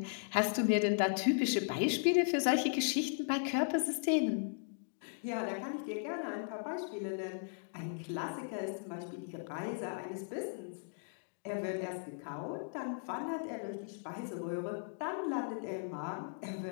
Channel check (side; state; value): right; silent; digital silence